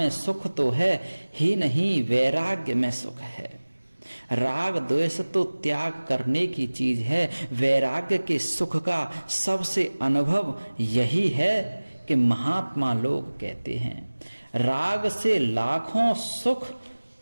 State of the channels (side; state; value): both; inverted; correlation -1.00